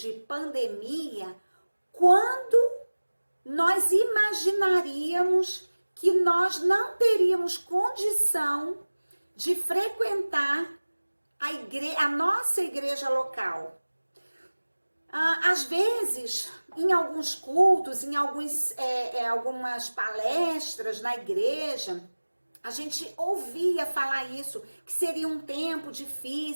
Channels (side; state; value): both; inverted; correlation -1.00